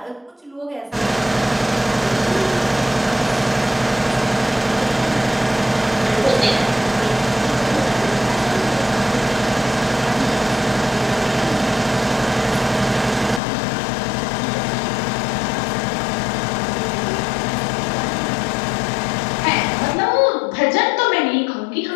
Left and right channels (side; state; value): right; drops out; at 13.4 s